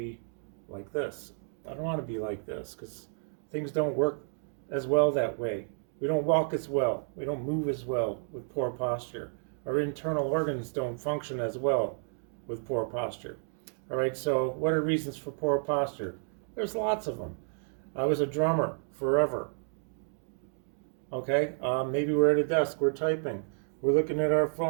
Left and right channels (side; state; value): left; silent; 57 dB below the other